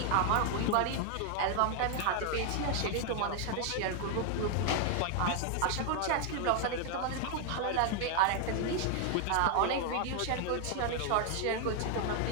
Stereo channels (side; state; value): both; different; correlation 0.00